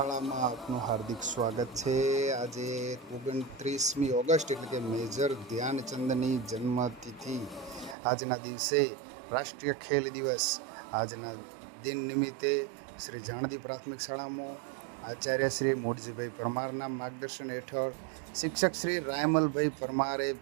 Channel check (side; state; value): left; drops out; at 8.0 s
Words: આપનું હાર્દિક સ્વાગત છે। આજે 29મી ઓગસ્ટ એટલે કે મેજર ધ્યાનચંદની જન્મતિથિ આજના દિવસે રાષ્ટ્રીય ખેલ દિવસ આજના દિન નિમિત્તે શ્રી જાણદી પ્રાથમિક શાળામાં આચાર્ય શ્રી મોઢજીભાઈ પરમારના માર્ગદર્શન હેઠળ શિક્ષક શ્રી રાયમલભાઈ પરમારે